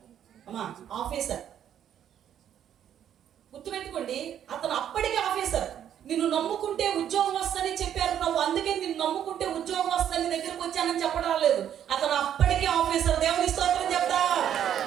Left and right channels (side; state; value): left; quieter; 9.9 dB